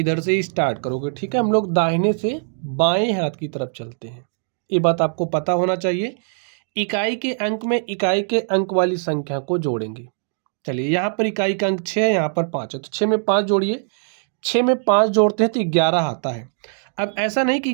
से ही स्टार्ट करोगे, ठीक है। हम लोग दाहिने से बाएं हाथ की तरफ चलते हैं, ये बात आपको पता होना चाहिए। इकाई के अंक में इकाई के अंक वाली संख्या को जोड़ेंगे। चलिए यहाँ पर इकाई का अंक 6 है, यहाँ पर 5 है, तो 6 में 5 जोड़िए। 6 में 5 जोड़ते हैं तो 11 आता है। अब ऐसा नहीं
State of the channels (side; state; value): left; silent; 61 dB below the other